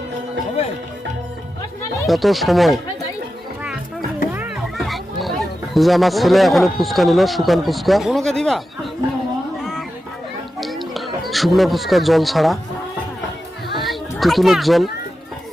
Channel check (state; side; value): normal; both; correlation 0.91